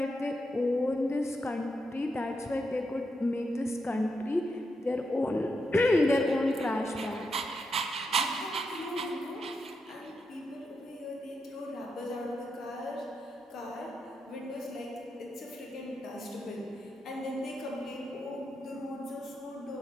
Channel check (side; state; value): both; normal; correlation 0.84